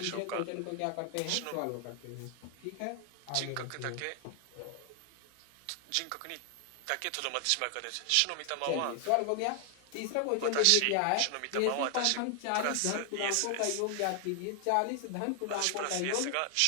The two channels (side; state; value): both; different; correlation 0.00